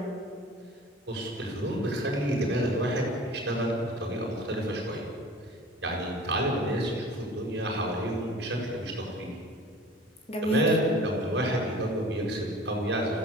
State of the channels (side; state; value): both; normal; correlation 0.44